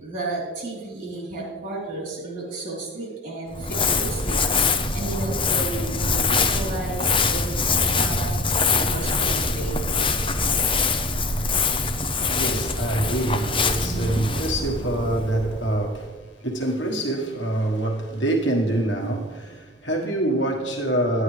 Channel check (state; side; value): normal; both; correlation 0.37